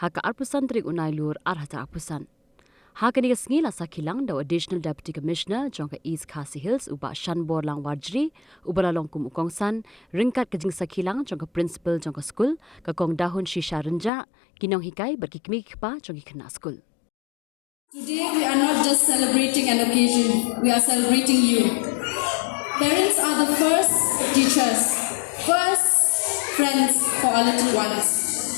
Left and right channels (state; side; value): drops out; right; at 14.1 s